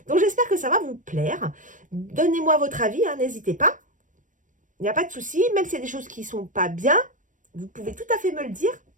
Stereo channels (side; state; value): left; late; 0.37 ms